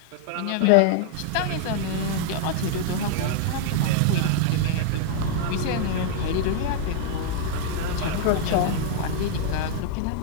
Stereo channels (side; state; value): both; different; correlation 0.00